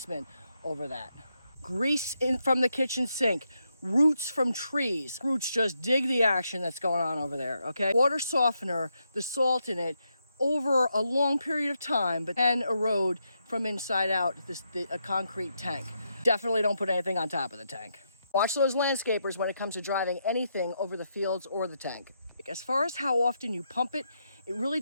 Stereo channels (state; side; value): inverted; both; correlation -0.81